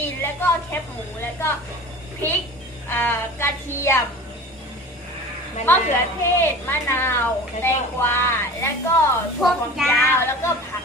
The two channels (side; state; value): both; normal; correlation 0.38